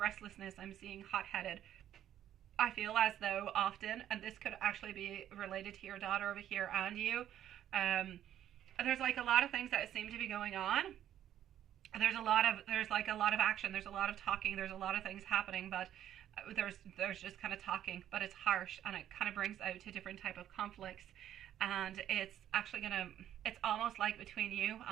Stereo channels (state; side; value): quieter; left; 11.2 dB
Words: I'm seeing hot-headed. I feel as though often, and this could actually be related to your daughter over here and you, there's like a lot of things that seem to be going on. There's like a lot of action, there's a lot of talking, there's a lot of things happening, but there's just kind of talking, but it's harsh and it kind of brings out to different type of conflicts. And it's actually it's almost like between you